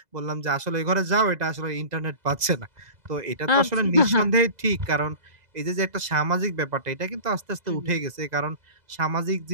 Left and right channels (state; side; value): late; left; 2.0 ms